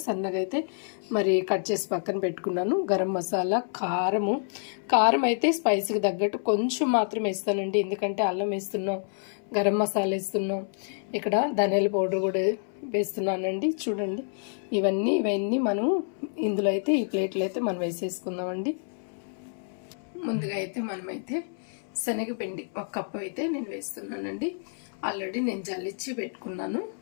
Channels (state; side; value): silent; right; 59 dB below the other